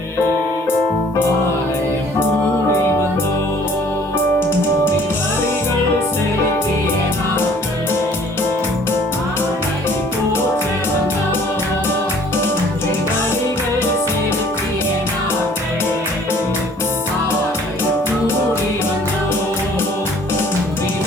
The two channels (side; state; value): both; normal; correlation 0.55